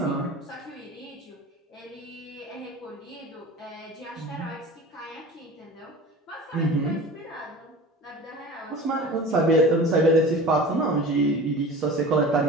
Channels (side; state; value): both; normal; correlation 0.37